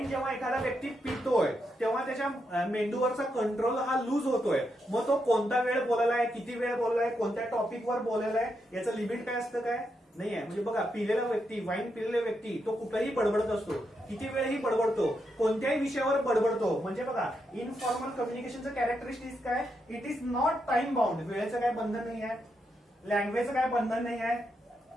जेव्हा एखादा व्यक्ती पितोय तेव्हा त्याच्या मेंदूवरचा कंट्रोल हा लूज होतोय. मग तो कोणता वेळ बोलायलाय, किती वेळ बोललाय, कोणत्या टॉपिकवर बोलायलाय याचं लिमिट काय असतं काय नाहीये. म्हणजे बघा, पिलेला व्यक्ती, वाईन पिलेला व्यक्ती तो कुठलाही बडबडत असतो, किती वेळही बडबडतो, कोणत्याही विषयावर बडबडतो. म्हणजे बघा, इनफॉर्मल कम्युनिकेशनचं कॅरेक्टरिस्टिक्स काय, it is not time bound. वेळेचं काय बंधन नाही आहे, लँग्वेजचं काय बंधन नाही आहे.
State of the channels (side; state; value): both; normal; correlation 0.82